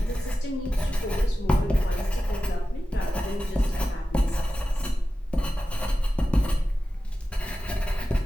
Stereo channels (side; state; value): both; normal; correlation 0.94